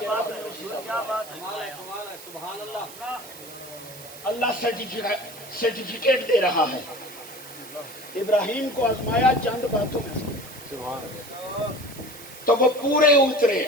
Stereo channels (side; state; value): right; noise; hiss, 16 dB below the sound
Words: اللہ سرٹیفکیٹ دے رہا ہے، ابراہیم کو آزمایا چند باتوں میں تو وہ پورے اترے۔